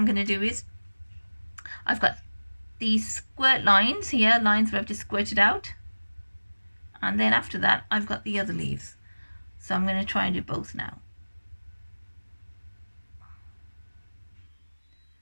going to do is, I've got these squirt lines here, lines where I've just squirted out. And then after that, I've got the other leaves. So I'm going to try and do both now.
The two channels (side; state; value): both; inverted; correlation -1.00